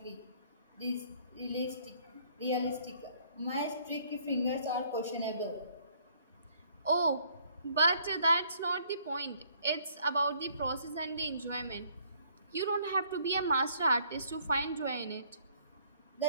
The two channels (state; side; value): inverted; both; correlation -0.62